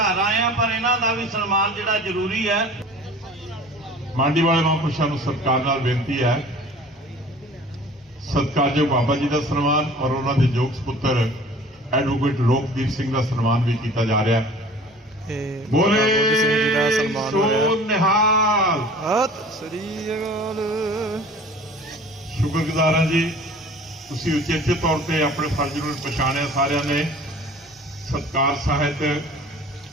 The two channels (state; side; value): normal; both; correlation 0.45